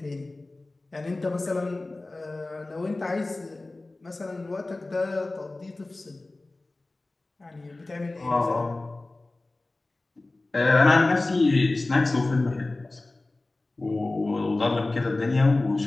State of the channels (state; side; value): quieter; right; 3.0 dB